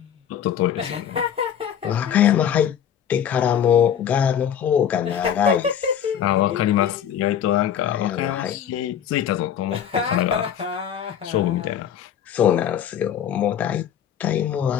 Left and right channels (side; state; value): right; quieter; 9.2 dB